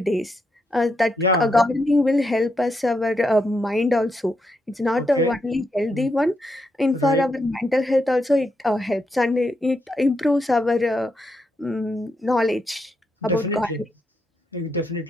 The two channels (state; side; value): normal; both; correlation 0.81